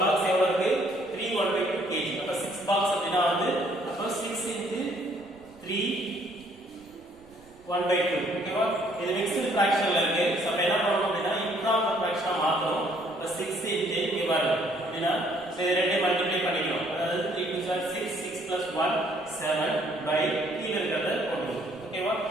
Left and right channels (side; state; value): right; noise; rumble, 27 dB below the sound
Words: பாக்ஸ் எவ்வளோ இருக்கு? 3 1/2 kg. அப்போ 6 பாக்ஸ் அப்படின்னா வந்து அப்போ 6 into 3 1 by 2 ஓகேவா இது மிக்ஸ்டு ஃபிராக்ஷன்ல இருக்கு சோ அப்ப என்ன பண்ணனும் அப்படினா இம்ப்ராப்பர் ஃபிராக்ஷனா மாத்தணும் இப்ப 6 இன்டு இங்க பாருங்க அப்படினா சோ இது ரெண்டையும் மல்டிப்ளை பண்ணிக்கணும் அதாவது 3 2 6 6 plus 1 7 by கீழ இருக்கறத போடுவோம் ஓகேவா